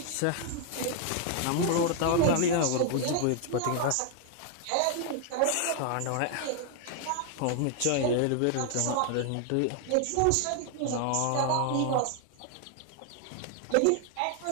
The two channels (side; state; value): both; different; correlation 0.00